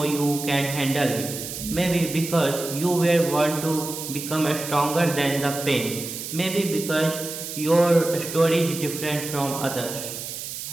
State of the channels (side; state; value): right; noise; hiss, 8 dB below the sound